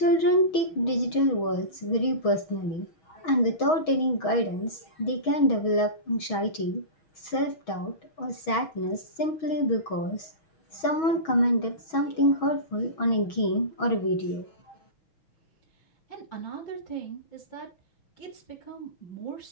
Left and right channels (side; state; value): right; late; 6.2 ms